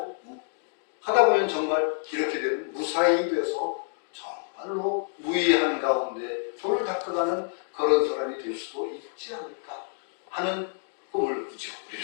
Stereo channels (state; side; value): silent; right; digital silence